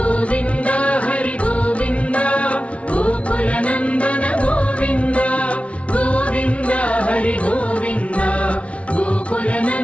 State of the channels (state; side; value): late; right; 0.063 ms